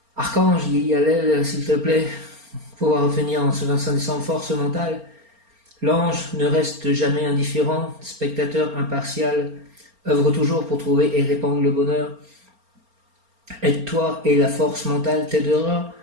Archange, Yehi Hallel, s'il te plaît, pouvoir obtenir en ce 25 décembre force mentale. L'ange ne reste jamais indifférent, spectateur impartial, œuvre toujours pour trouver et répandre le bonheur. Aide-toi et la force mentale t'aidera.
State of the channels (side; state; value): left; late; 4.3 ms